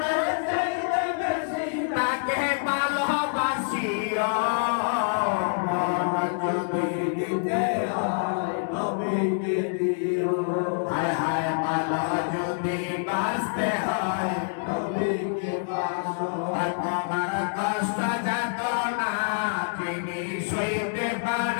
চাইতে বেশি তাকে ভালোবাসিও মন যদি দিতে হয় নবীকে দিও হায় হায় ভালো যদি বাঁচতে হয় নবীকে বাসো আর তোমার কষ্ট যাত না তিনি সইতে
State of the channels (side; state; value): right; silent; digital silence